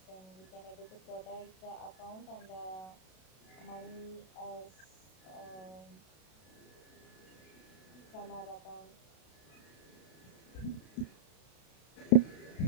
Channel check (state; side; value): late; right; 32 ms